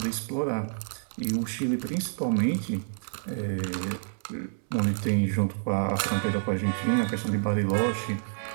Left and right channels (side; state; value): left; silent; 59 dB below the other